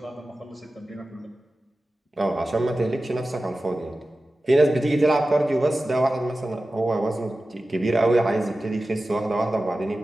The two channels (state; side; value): normal; both; correlation 0.95